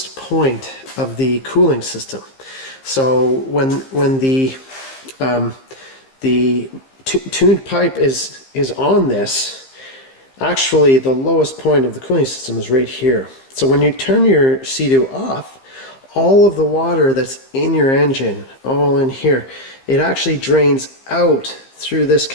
point of the cooling system. So when the tuned pipe is on this, actually the lowest point of the cooling system is right here. So when you turn your Sea-Doo off, all of the water that's in your engine, all in here, it actually drains out through this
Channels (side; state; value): right; late; 15 ms